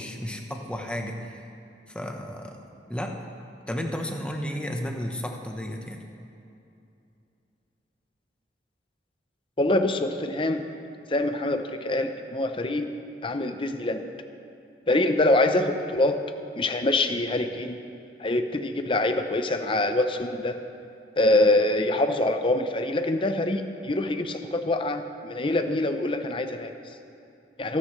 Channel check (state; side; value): normal; both; correlation 0.49